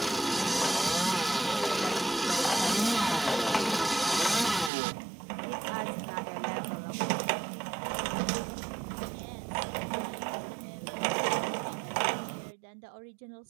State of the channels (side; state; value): left; drops out; at 4.7 s